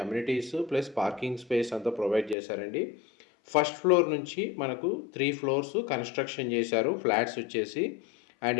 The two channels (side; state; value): right; drops out; at 2.4 s